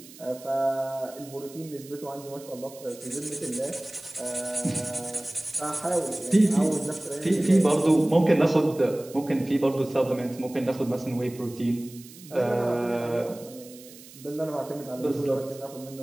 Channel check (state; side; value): noise; right; hiss, 19 dB below the sound